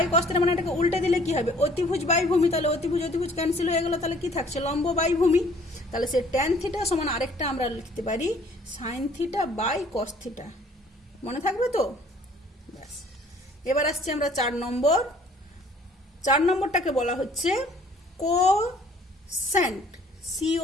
কস থিটা মানে এটাকে উল্টে দিলে কি হবে? অতিভুজ বাই ভূমি। তাহলে অতিভুজ ক্যান্সেল হয়ে গেল, তাহলে কি থাকছে? লম্ব বাই ভূমি। তাহলে সে ট্যান থিটা সমান আরেকটা আমরা লিখতে পারি sine theta by cos theta. মনে থাকবে তো? ব্যাস। এবার আসছি আমরা 4 নম্বর। 4 নম্বরটাকে বলা হচ্ছে কোসেন্ট,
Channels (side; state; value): both; normal; correlation 0.56